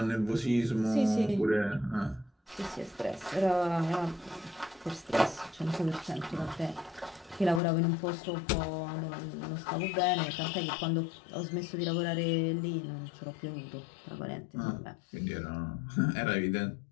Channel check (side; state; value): right; drops out; at 7.6 s